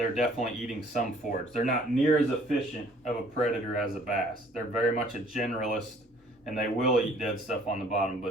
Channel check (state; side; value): normal; both; correlation 0.57